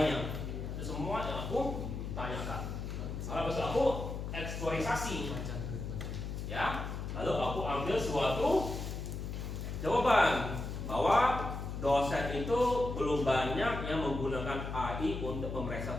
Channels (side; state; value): left; noise; hum, 5 dB below the sound